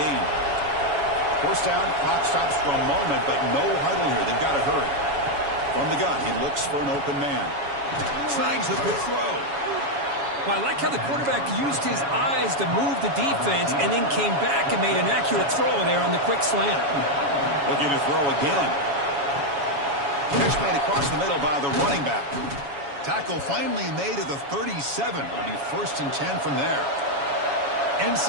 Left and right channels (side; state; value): left; late; 7.2 ms